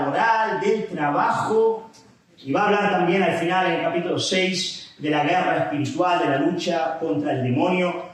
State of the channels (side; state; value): both; identical; correlation 1.00